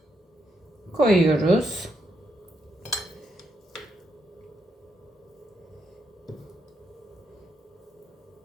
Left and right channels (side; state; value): both; normal; correlation 0.79